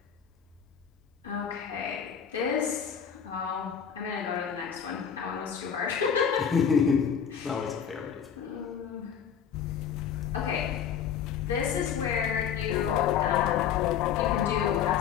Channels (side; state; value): right; quieter; 8.0 dB